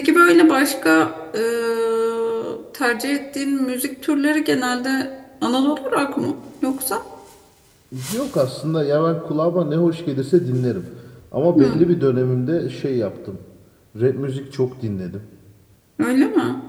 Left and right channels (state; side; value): identical; both; correlation 1.00